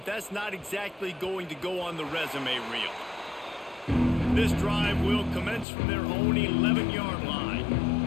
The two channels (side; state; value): right; drops out; at 5.7 s